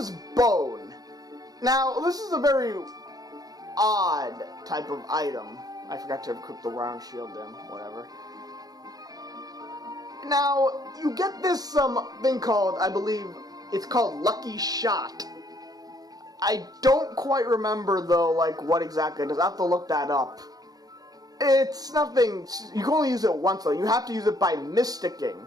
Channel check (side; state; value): left; late; 0.18 ms